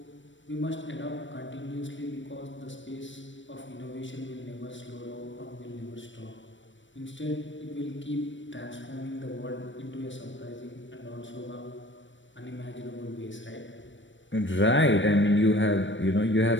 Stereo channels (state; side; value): late; right; 0.55 ms